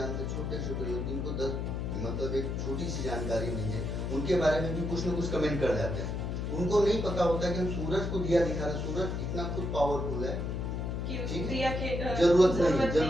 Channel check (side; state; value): left; noise; hum, 2 dB below the sound